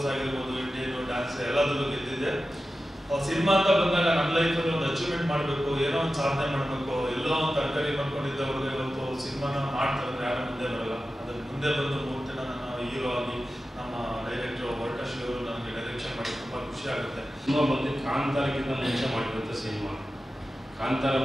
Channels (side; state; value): both; normal; correlation 0.93